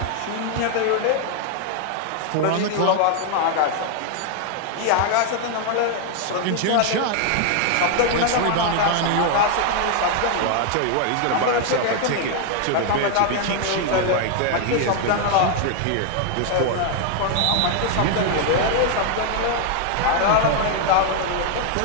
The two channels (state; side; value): different; both; correlation 0.00